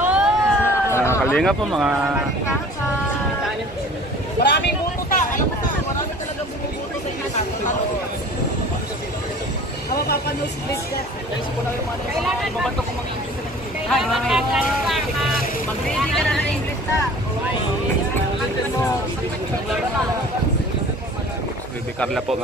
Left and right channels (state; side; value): normal; both; correlation 0.46